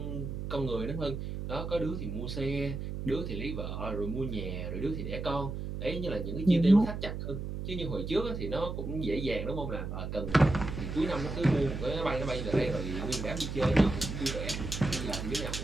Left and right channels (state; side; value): noise; right; hum, 5 dB below the sound